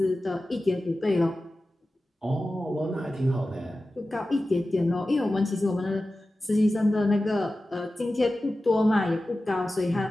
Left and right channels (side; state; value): both; normal; correlation 0.95